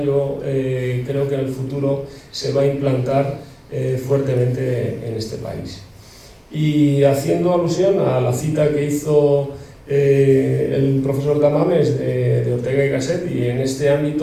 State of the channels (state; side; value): identical; both; correlation 1.00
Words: yo creo que en el futuro se va a implantar fuertemente en este país. Y haciendo alusión a la cita que hizo el profesor Tamames de Ortega y Gasset, y en este